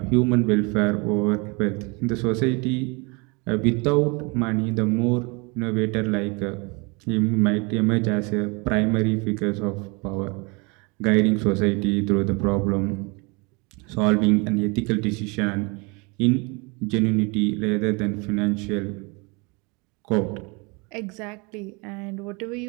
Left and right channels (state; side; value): quieter; left; 29.2 dB